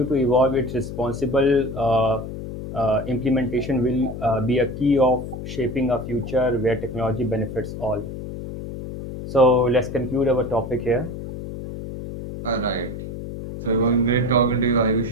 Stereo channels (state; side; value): noise; left; hum, 8 dB below the sound